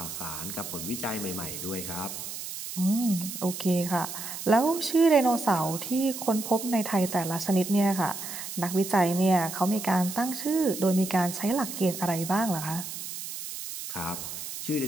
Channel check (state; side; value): noise; right; hiss, 8 dB below the sound